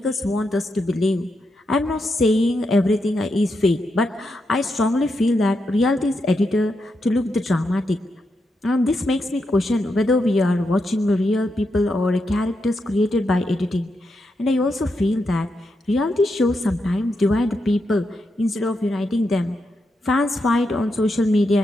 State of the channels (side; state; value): both; normal; correlation 0.84